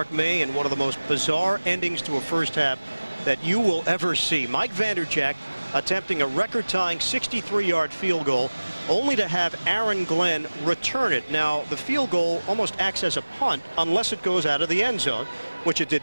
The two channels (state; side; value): inverted; both; correlation -1.00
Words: May, and one of the most bizarre endings to a first half that you will ever see. Mike Vanderjagt attempting a record-tying 63-yard field goal, only to have Aaron Glenn return it. Now, the field goal almost acts as a punt unless it goes out of the end zone, which it